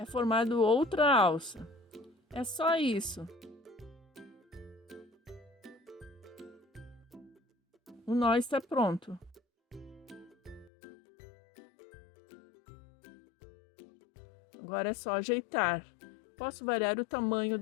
formado outra alça. É só isso. O nó está pronto. Agora é só ajeitar. Posso variar o tamanho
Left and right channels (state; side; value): drops out; right; at 10.7 s